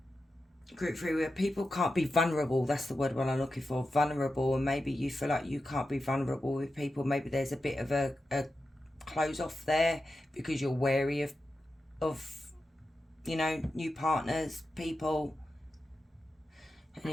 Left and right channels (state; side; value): normal; both; correlation 0.90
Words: Group 3, where people can't be vulnerable. That's the word what I'm looking for, vulnerable. And maybe you feel like you can't be vulnerable with people. Maybe there's a bit of a close off there because you're wary of you know, new partners, people.